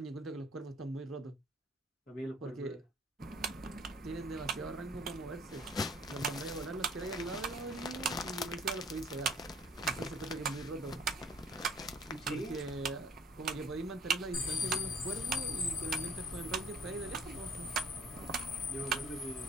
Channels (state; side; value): normal; both; correlation 0.53